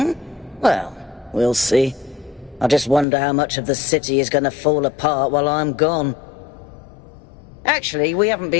Well, we'll see. I just wonder how much of the city is going to fall apart while I'm gone. Actually, we haven't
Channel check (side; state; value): right; drops out; at 3.1 s